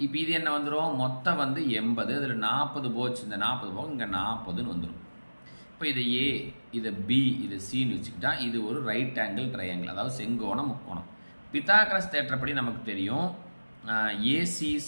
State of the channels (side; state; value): both; inverted; correlation -1.00